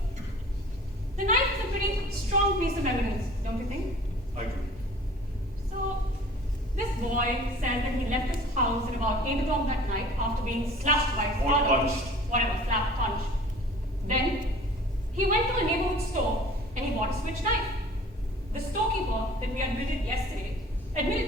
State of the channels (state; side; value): normal; both; correlation 0.47